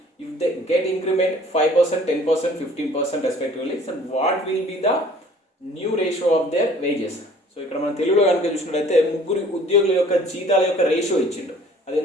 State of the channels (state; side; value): normal; both; correlation 0.52